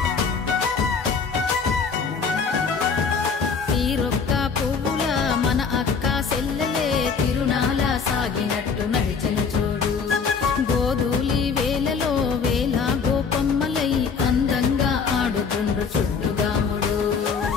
తీరొక్క పువ్వుల మన అక్క సెల్లెలే తిరునాల సాగినట్టు నడిచెను చూడు గోధూలి వేలలో వేల గోపమ్మలై అందంగా ఆడుతుండ్రు చుట్టుగాముడు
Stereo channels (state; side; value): quieter; right; 5.6 dB